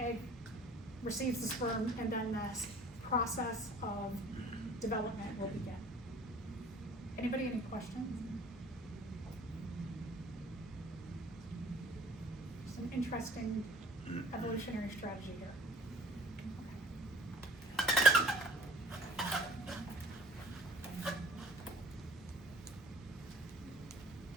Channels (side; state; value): both; normal; correlation 0.51